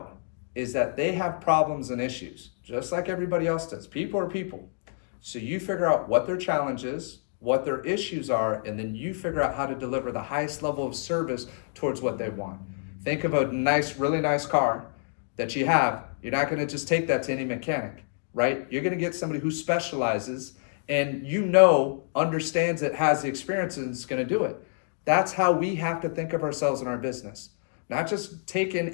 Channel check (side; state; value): right; silent; digital silence